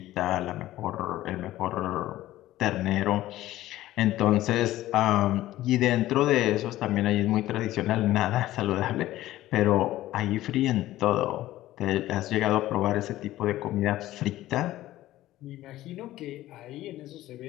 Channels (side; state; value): right; quieter; 15.3 dB